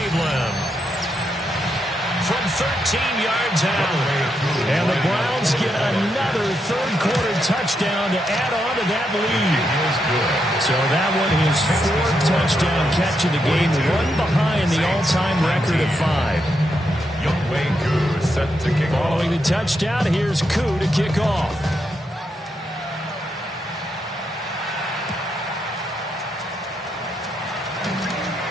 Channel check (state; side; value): normal; both; correlation 0.82